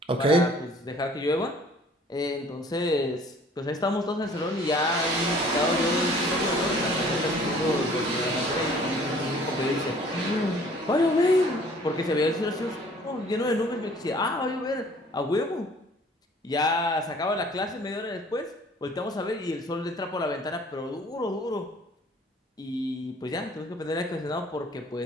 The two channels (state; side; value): normal; both; correlation 0.53